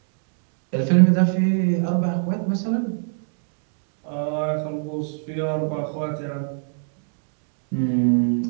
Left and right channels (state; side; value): silent; left; digital silence